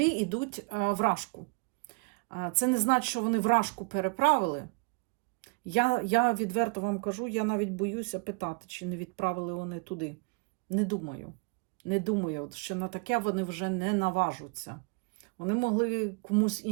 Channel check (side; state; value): left; quieter; 31.7 dB